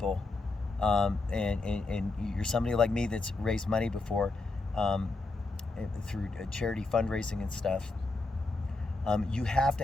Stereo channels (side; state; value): right; quieter; 3.3 dB